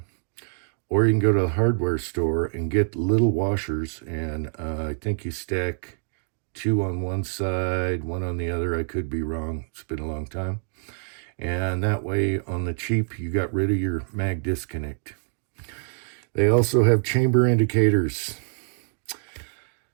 Or you can go to the hardware store and get little washers, and I think you stack 2 on one side, 1 on the other. I could be wrong. It's been a long time. And that way, on the cheap, you got rid of your mag disconnect. They also have chamber indicators.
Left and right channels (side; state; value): left; silent; 61 dB below the other